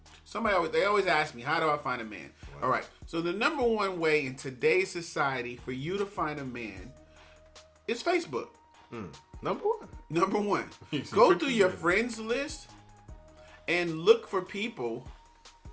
always ask me, how do I find a man? Wow. All right. So the number one way in today's society for you to find a man is Facebook. Number one. Go through your friends list and look for people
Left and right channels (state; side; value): identical; both; correlation 1.00